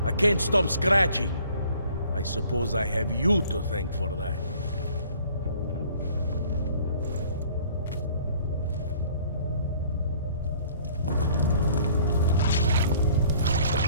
I can't stop scratching. I suppose I have you to thank for that.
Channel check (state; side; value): inverted; both; correlation -0.55